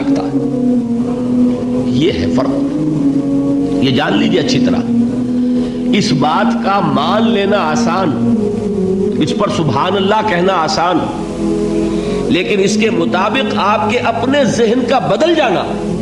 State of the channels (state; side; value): identical; both; correlation 1.00